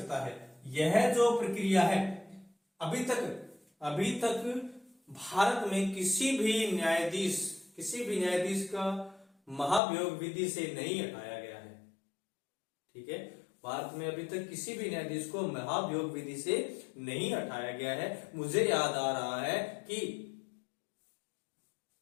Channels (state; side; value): drops out; right; at 9.8 s